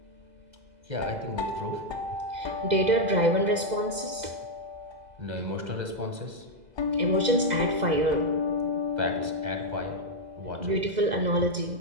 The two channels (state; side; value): late; left; 2.0 ms